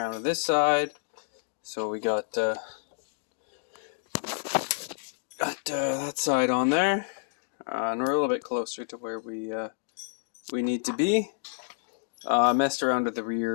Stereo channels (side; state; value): right; silent; digital silence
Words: with this side, so we got that side on there, and we're a little bit closer to where we need to be. Messed around with the